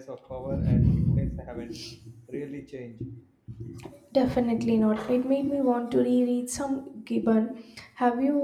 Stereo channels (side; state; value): both; identical; correlation 1.00